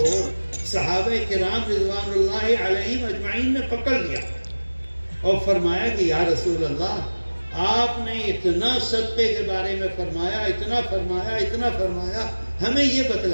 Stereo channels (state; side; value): inverted; both; correlation -1.00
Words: صحابہ کرام رضوان اللہ علیہم اجمعین نے پکڑ لیا اور فرمایا کہ یا رسول اللہ، آپ نے اتنا صدقے کے بارے میں فرمایا، اتنا فرمایا، اتنا فرمایا، ہمیں یہ